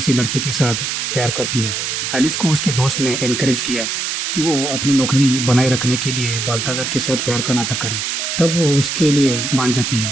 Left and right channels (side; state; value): right; noise; hiss, 2 dB below the sound